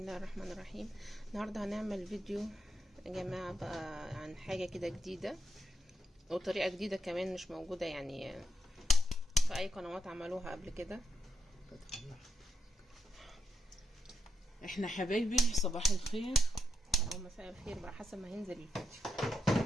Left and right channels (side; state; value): both; normal; correlation 0.84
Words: الرحمن الرحيم. النهاردة هنعمل فيديو يا جماعة بقى عن حاجة كده جديدة وطريقة جديدة كمان مش موجودة يعني في اي قنوات عملوها قبل كده. احنا حبايبي صباح الخير او مساء الخير بقى حسب ما هينزل